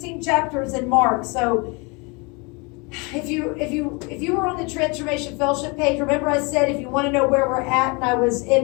chapters in Mark. So if you were on the Transformation Fellowship page, remember I said if you want to know where we're at, and I was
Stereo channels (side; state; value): right; quieter; 29.7 dB